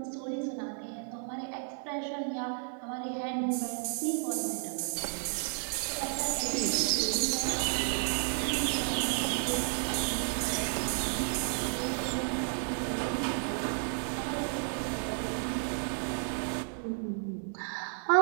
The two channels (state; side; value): silent; left; 56 dB below the other